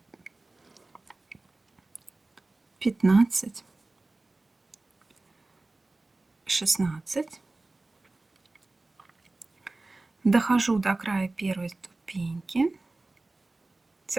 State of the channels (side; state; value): left; quieter; 3.1 dB